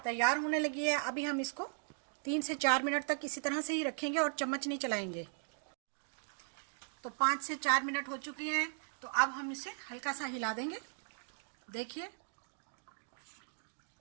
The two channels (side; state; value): left; silent; digital silence